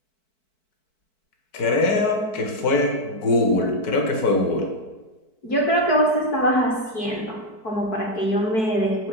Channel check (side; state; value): right; late; 4.6 ms